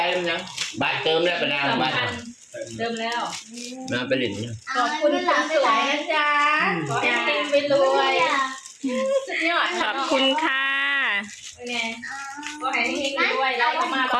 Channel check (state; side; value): identical; both; correlation 1.00